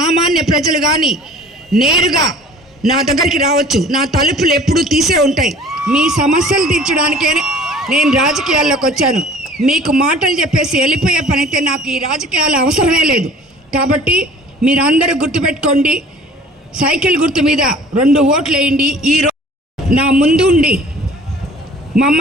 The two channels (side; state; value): both; normal; correlation 0.48